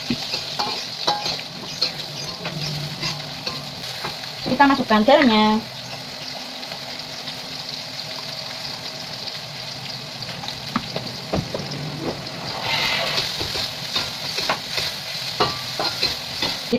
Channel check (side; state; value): both; identical; correlation 1.00